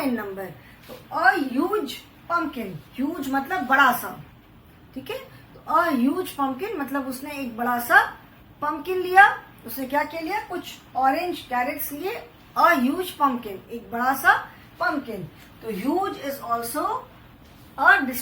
number. तो अ ह्यूज पंपकिन, ह्यूज मतलब बड़ा सा, ठीक है। तो अ ह्यूज पंपकिन मतलब उसने एक बड़ा सा पंपकिन लिया, उसने क्या क्या लिया, कुछ ऑरेंज कैरेट्स लिए, अ ह्यूज पंपकिन, एक बड़ा सा पंपकिन। तो huge is also a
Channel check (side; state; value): both; identical; correlation 1.00